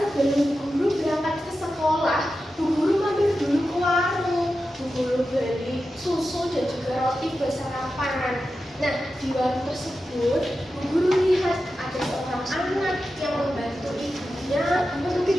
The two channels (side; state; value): both; normal; correlation 0.91